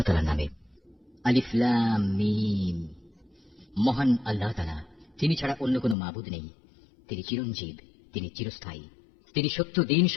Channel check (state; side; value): drops out; right; at 6.0 s